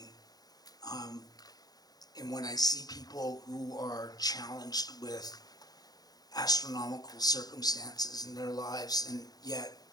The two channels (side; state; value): right; late; 0.19 ms